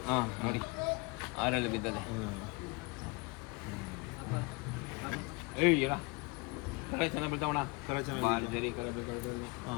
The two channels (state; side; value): quieter; right; 27.8 dB